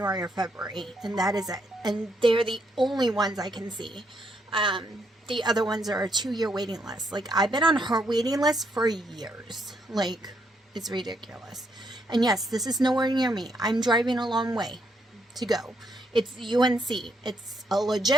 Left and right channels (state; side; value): normal; both; correlation 0.76